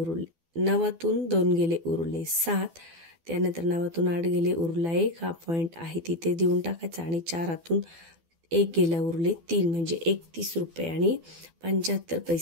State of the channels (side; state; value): left; late; 12 ms